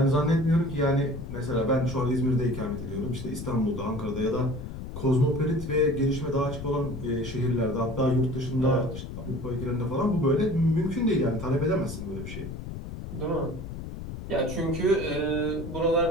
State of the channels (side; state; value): left; noise; rumble, 9 dB below the sound